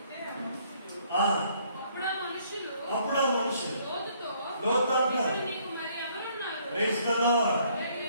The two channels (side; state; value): both; inverted; correlation -0.65